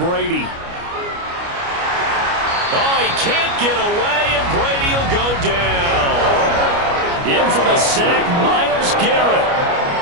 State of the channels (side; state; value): left; late; 29 ms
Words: Oh, he can't get away, and Brady will go down. In for the sack, Myles Garrett.